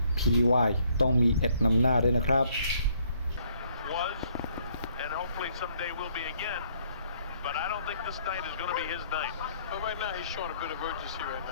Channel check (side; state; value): both; inverted; correlation -0.67